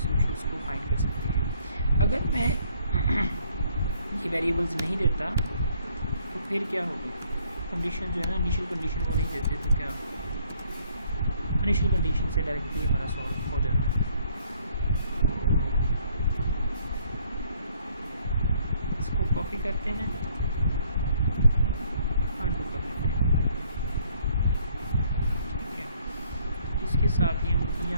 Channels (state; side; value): inverted; both; correlation -0.64